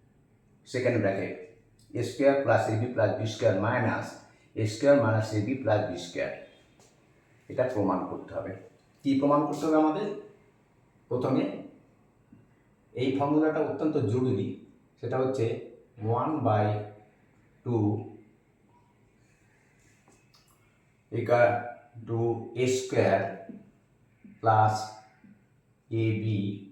second bracket A square plus AB plus B square minus A square minus AB plus B square. এটা প্রমাণ করতে হবে। কি প্রমাণ করতে হবে আমাদের? প্রথমে এই ফর্মুলাটা অত্যন্ত জরুরি, সেটা হচ্ছে 1/2 equal to A square plus AB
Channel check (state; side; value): identical; both; correlation 1.00